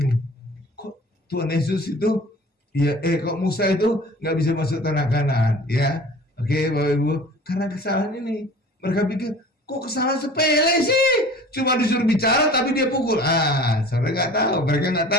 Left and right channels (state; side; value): normal; both; correlation 0.44